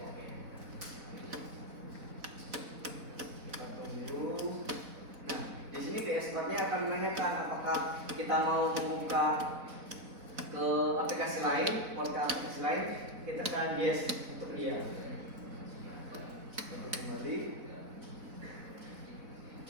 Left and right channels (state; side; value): late; left; 4.0 ms